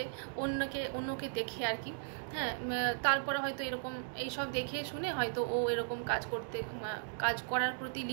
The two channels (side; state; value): left; silent; digital silence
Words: অন্যকে দেখে আর কি। হ্যাঁ, তারপরে হয়তো এরকম এইসব দেখে শুনে হয়তো ও এরকম কাজ করার প্রতি